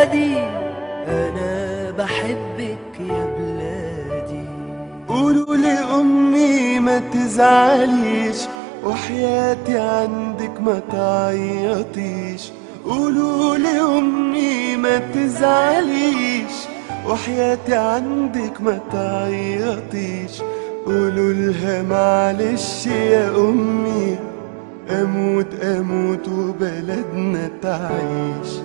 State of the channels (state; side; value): drops out; left; at 8.6 s